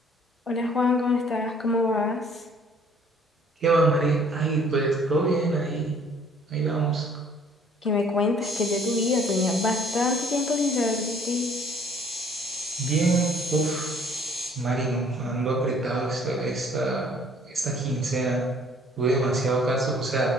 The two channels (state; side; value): normal; both; correlation 0.58